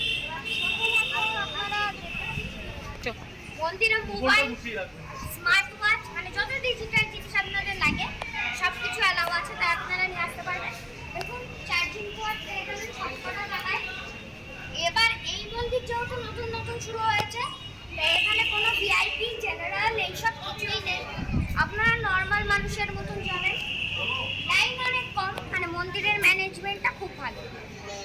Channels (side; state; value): both; identical; correlation 1.00